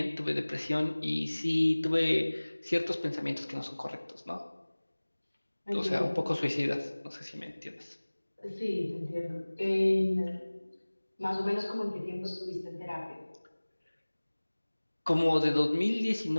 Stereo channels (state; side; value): inverted; both; correlation -1.00